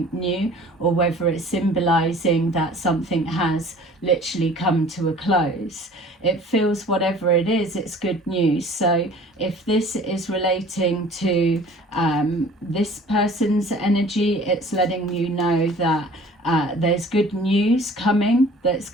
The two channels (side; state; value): both; normal; correlation 0.48